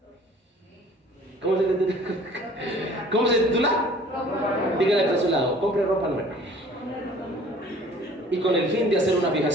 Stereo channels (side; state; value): both; normal; correlation 0.51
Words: ¿Cómo se titula? Dígale a su lado, compre ropa nueva. Y con el fin de hacer una